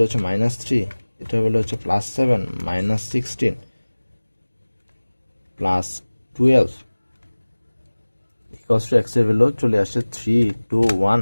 হচ্ছে -3, এটার ভ্যালু হচ্ছে +7, -16, +12 x এর ভ্যালু চলে আসছে 3, 2, 1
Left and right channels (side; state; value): both; inverted; correlation -1.00